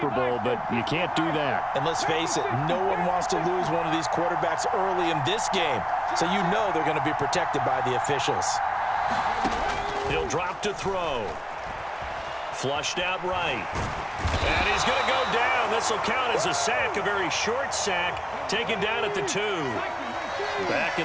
Bowl, but you can't do that. And let's face it, no one wants to lose one of these quarterbacks early in this game. So you know they're going to be protected by the officials. He'll drop to throw. Flushed out right. And he's going to go down. This will count as a sack, a very short sack, taken down at the 2. Back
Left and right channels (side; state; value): both; identical; correlation 1.00